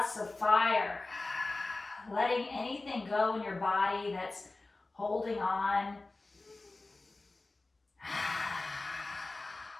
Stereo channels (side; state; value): right; quieter; 3.2 dB